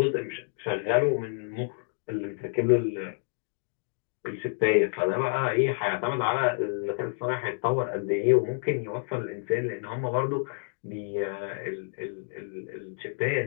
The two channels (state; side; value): silent; right; digital silence